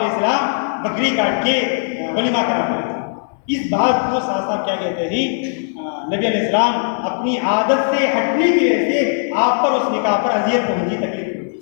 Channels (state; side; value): silent; right; 67 dB below the other